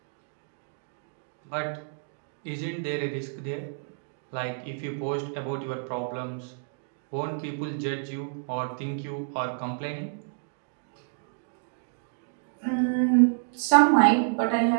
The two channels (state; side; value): silent; left; digital silence